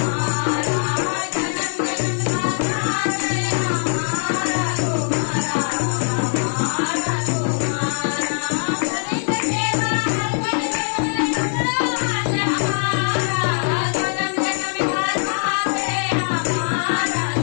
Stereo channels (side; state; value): right; silent; 65 dB below the other